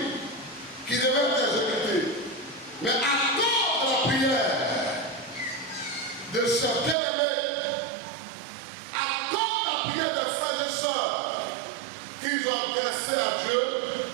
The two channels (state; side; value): drops out; left; at 7.0 s